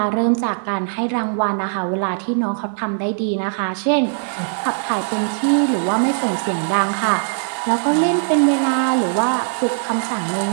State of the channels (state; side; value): silent; left; digital silence